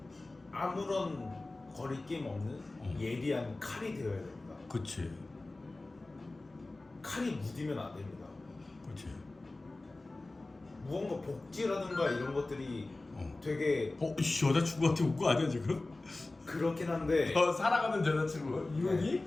아무런 거리낌 없는 예리한 칼이 되어야 됩니다. 그치. 칼이 무디면 안 됩니다. 그치. 무언가 복지라든가 이런 것들이 되게 여자친구한테 온 거 아니야 지금? 그렇긴 한데 사랑하는 여자친구 이혼이?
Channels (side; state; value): right; quieter; 3.0 dB